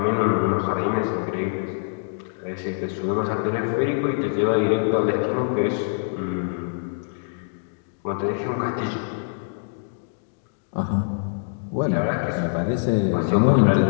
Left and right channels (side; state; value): right; silent; digital silence